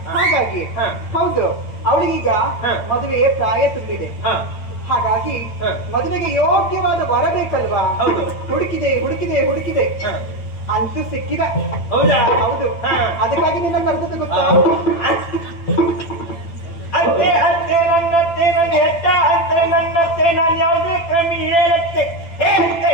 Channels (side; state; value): right; late; 8.9 ms